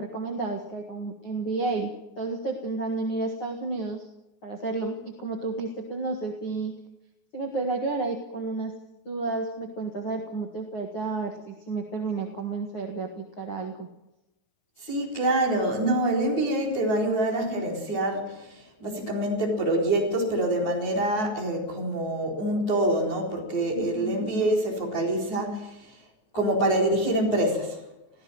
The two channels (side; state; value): right; late; 9.4 ms